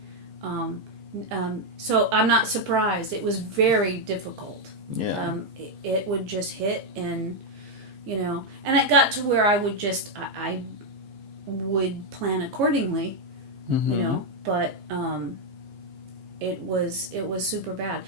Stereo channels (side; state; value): left; late; 15 ms